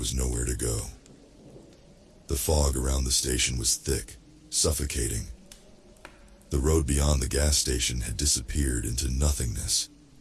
nowhere to go. The fog around the station was thick, suffocating. The road beyond the gas station had disappeared into nothingness,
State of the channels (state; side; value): identical; both; correlation 1.00